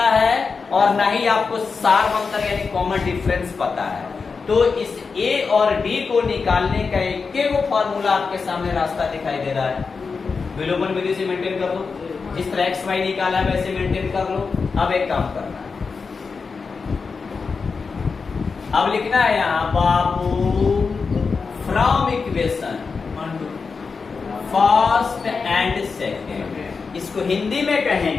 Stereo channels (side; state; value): right; quieter; 4.9 dB